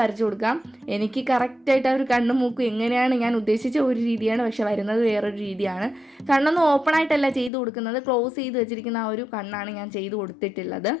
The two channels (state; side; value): drops out; right; at 7.5 s